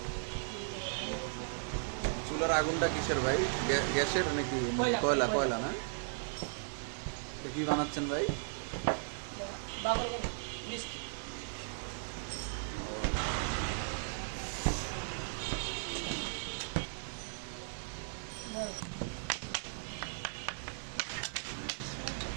চুলার আগুনটা কিসের ভাই? গ্যাসের নাকি কয়লা? কয়লা না? এটা কি বানাচ্ছেন ভাই? মিষ্টি।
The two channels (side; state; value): left; silent; 53 dB below the other